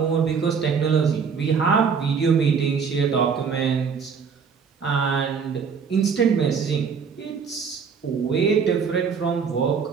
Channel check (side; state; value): left; quieter; 6.1 dB